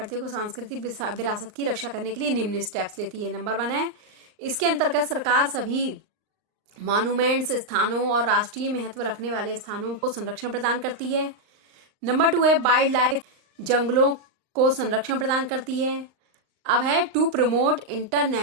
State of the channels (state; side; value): late; left; 39 ms